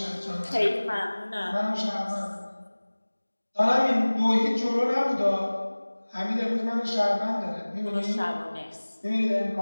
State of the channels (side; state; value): both; inverted; correlation -1.00